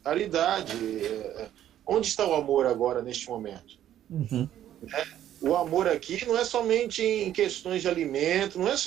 Caridade. Onde está o amor agora, neste momento? O amor aqui não é somente em questões de alimento, não é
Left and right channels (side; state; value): left; quieter; 11.5 dB